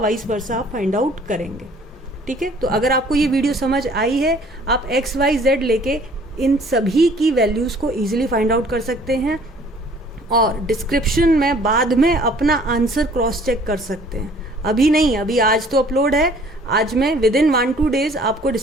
वर्सा आप फाइंड आउट करेंगे। ठीक है, तो अगर आपको ये वीडियो समझ आई है, आप x y z लेके इन सभी की वैल्यूज़ को ईजिली फाइंड आउट कर सकते हैं, और डिस्क्रिप्शन में बाद में अपना आंसर क्रॉस चेक कर सकते हैं। अभी नहीं, अभी आज तो अपलोड है, आज मैं विदिन 1-2 डेज आपको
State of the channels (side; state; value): both; normal; correlation 0.55